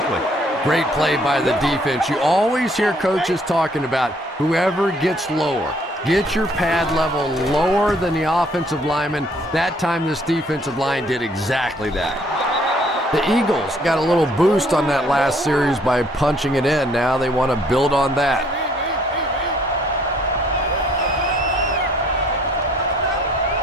Great play by the defense. You always hear coaches talking about whoever gets lower. Get your pad level lower than the offensive lineman. That time this defensive line did exactly that. The Eagles got a little boost on that last series by punching it in. Now they want to build on that.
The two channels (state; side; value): normal; both; correlation 0.62